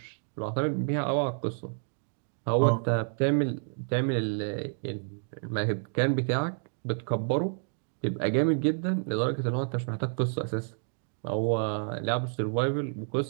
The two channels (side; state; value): left; silent; digital silence